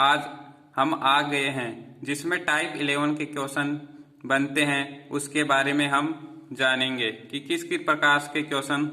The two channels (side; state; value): both; identical; correlation 1.00